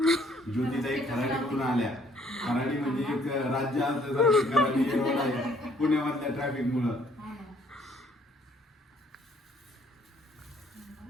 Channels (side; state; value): both; normal; correlation 0.63